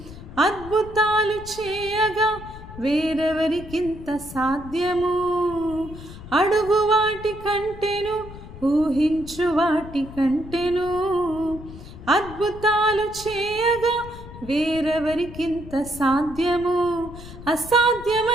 అద్భుతాలు చేయగా వేరెవరికింత సాధ్యము. అడుగు వాటి కంటేను, ఊహించు వాటి కంటేను, అద్భుతాలు చేయగా వేరెవరికింత సాధ్యము.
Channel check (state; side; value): noise; left; rumble, 15 dB below the sound